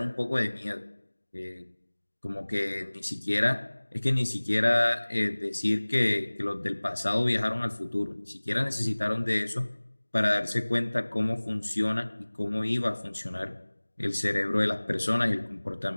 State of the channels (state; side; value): inverted; both; correlation -1.00